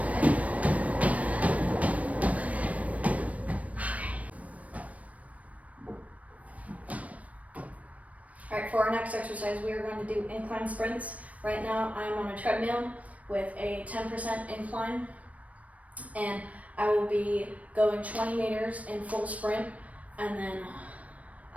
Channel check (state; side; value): late; left; 0.067 ms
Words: All right, for our next exercise, we are going to do incline sprints. Right now, I'm on a treadmill with a 10% incline, and I will be going 20 meters in full sprint, and then